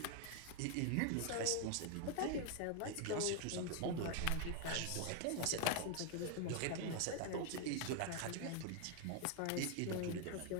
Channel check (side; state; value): both; different; correlation 0.01